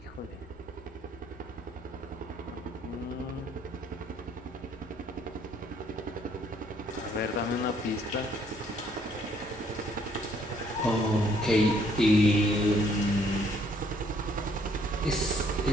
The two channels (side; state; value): both; normal; correlation 0.65